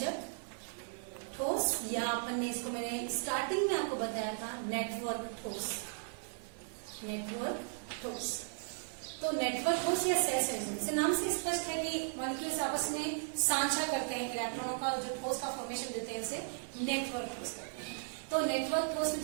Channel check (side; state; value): left; silent; digital silence